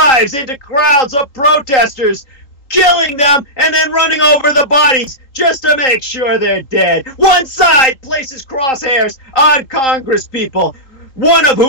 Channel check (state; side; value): late; right; 3.8 ms